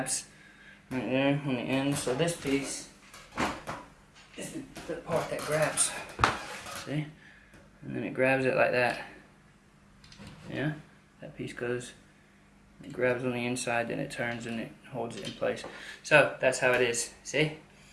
right there on the end. So this piece is the part that grabs. See? And then it grabs it like that. Yeah? That piece goes, it grabs on the inside, then it turns and it holds it in place. So that's how it is. See?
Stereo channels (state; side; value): identical; both; correlation 1.00